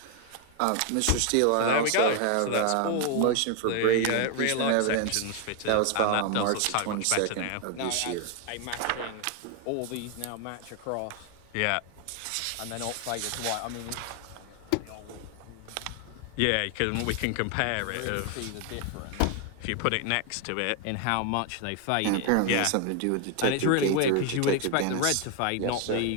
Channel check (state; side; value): different; both; correlation 0.01